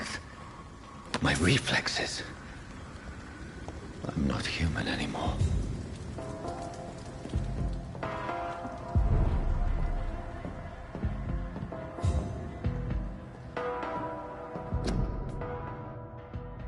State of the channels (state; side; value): identical; both; correlation 1.00